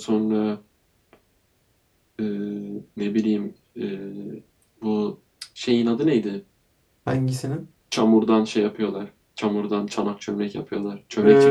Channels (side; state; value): both; identical; correlation 1.00